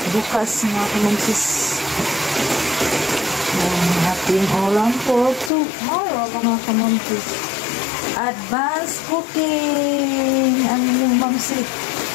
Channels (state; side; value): drops out; right; at 5.5 s